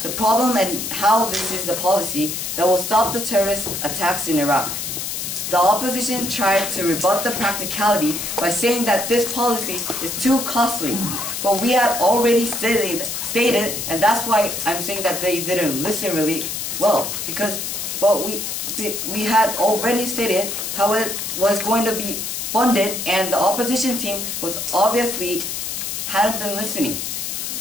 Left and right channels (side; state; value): left; noise; hiss, 4 dB below the sound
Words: the problem and how this is the policy that will stop the terrorist attacks in Iraq. The opposition tried to rebut the practicality by saying that this policy is too costly, but we had already stated, and that's why I'm saying that they didn't listen really well, because we had already stated how it was going to be funded, and the opposition team was obviously hadn't been listening.